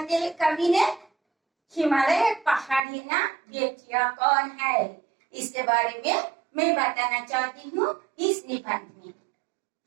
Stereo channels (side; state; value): left; drops out; at 2.8 s